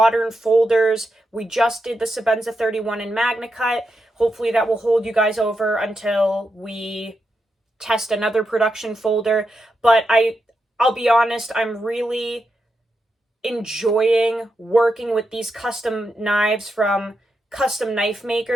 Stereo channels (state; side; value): normal; both; correlation 0.85